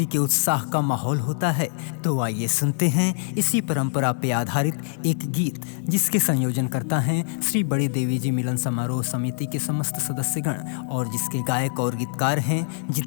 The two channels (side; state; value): right; silent; digital silence